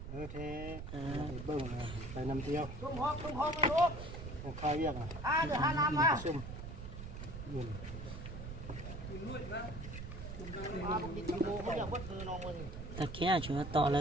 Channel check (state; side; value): noise; right; rumble, 9 dB below the sound